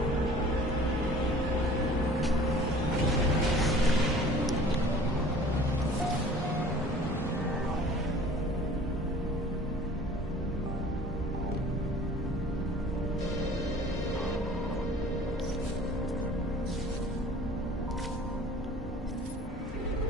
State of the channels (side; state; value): both; normal; correlation 0.48